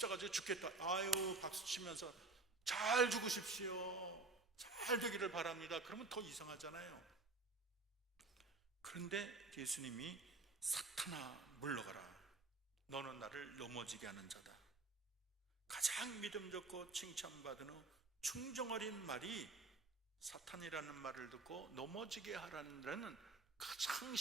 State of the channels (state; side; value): quieter; left; 3.6 dB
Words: 죽겠다. 아유 박수 치면서 잘 죽으십시오, 잘 되기를 바랍니다. 그러면 더 이상하잖아요. 그런데 예수님이 사탄아 물러가라. 너는 나를 넘어지게 하는 자다. 가장 믿음 좋고 칭찬받은 후 충정 어린 말이 사탄이라는 말을 듣고 넘어지게 하라는 가장